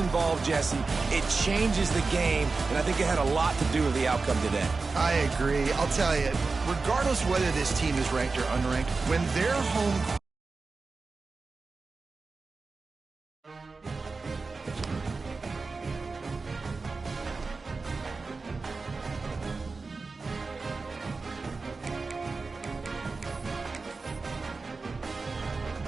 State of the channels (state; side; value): quieter; left; 4.1 dB